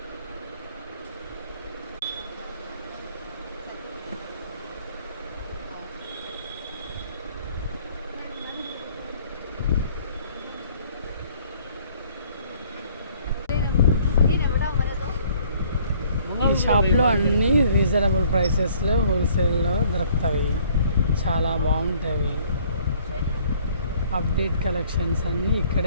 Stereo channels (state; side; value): inverted; both; correlation -0.59